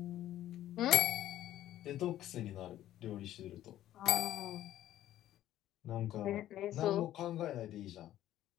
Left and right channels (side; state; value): right; quieter; 13.1 dB